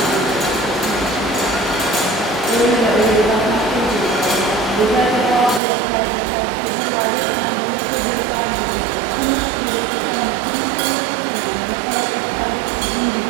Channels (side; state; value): left; drops out; at 5.6 s